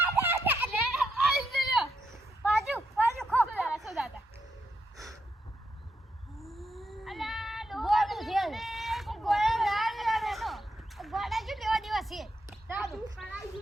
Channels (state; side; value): normal; both; correlation 0.81